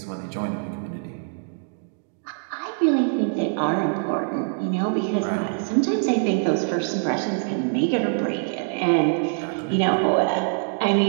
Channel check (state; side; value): silent; left; 57 dB below the other